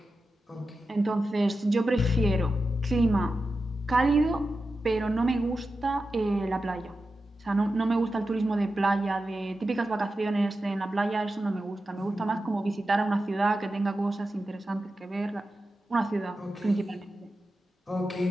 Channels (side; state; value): both; normal; correlation 0.92